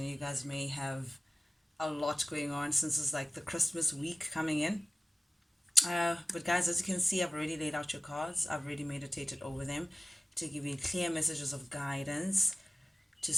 you guys may have a lot going on since it's like the Christmas week coming in. But guys, as you can see, I've already laid out your cards. I've already meditated over them to give you clear messages of guidance to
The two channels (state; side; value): normal; both; correlation 0.97